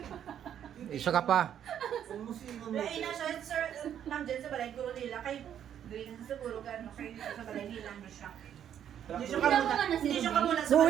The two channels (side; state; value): left; quieter; 9.7 dB